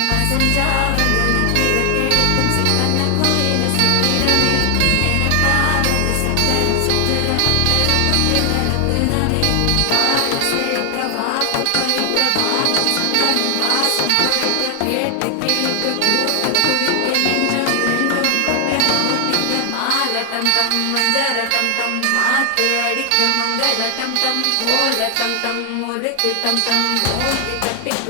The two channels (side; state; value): both; different; correlation 0.00